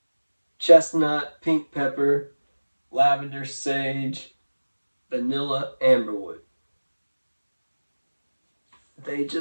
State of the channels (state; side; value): inverted; both; correlation -1.00